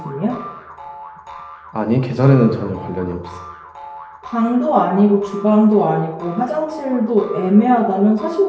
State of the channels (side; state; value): both; identical; correlation 1.00